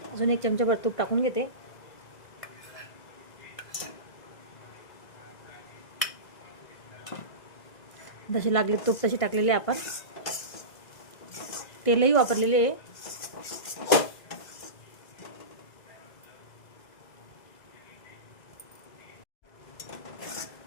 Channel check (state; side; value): late; right; 2.0 ms